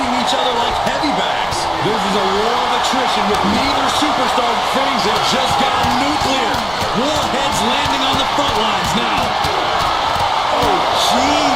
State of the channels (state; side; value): noise; right; rumble, 18 dB below the sound